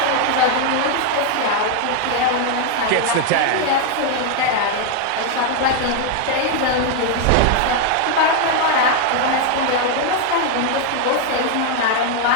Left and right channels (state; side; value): different; both; correlation 0.00